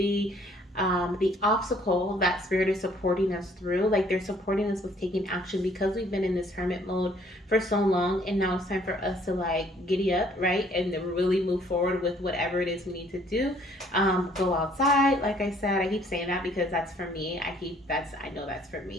obstacle that Spirit is supporting us through. Like they're supporting us with taking action because we've been in this hermit mode for so long, and now it's time for us to like giddy up, right? And really move forward with whatever it is we need to do. Go outside, like I said. I keep saying that because that's for me. I know that's for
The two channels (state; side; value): normal; both; correlation 0.61